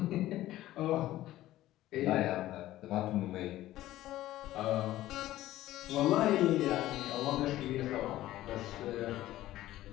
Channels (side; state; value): right; quieter; 15.0 dB